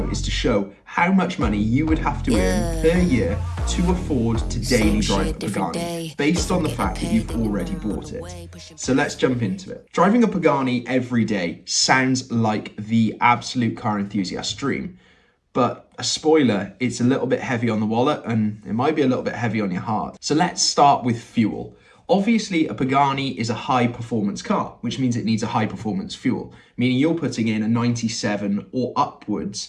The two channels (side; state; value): both; identical; correlation 1.00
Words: is to show how much money you would have to earn per year to afford to daily drive a Pagani, based on the fact that you've already bought it. So let's jump into it. Driving a Pagani every day sounds like the absolute car enthusiast dream, but a spoiler, it's a little bit heavy on the wallet and it might be a little bit heavy on your heart. So let's start with fuel. Obviously, a Pagani is a high performance car, which means it needs a high performance fuel, meaning you're putting in a 97 or